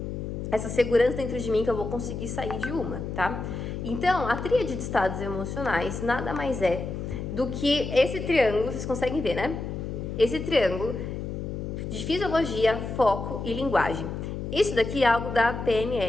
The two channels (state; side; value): noise; left; hum, 5 dB below the sound